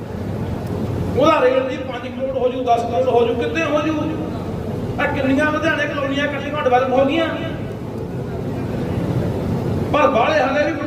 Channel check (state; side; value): identical; both; correlation 1.00